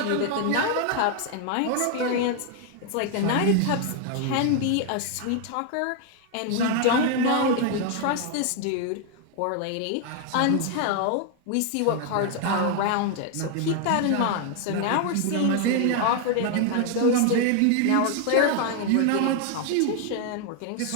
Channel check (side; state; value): both; different; correlation 0.00